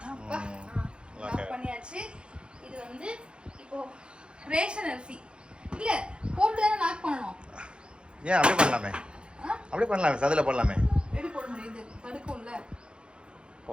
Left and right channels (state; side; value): late; left; 0.054 ms